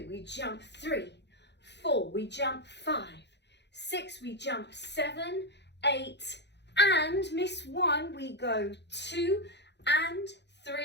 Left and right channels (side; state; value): right; late; 0.50 ms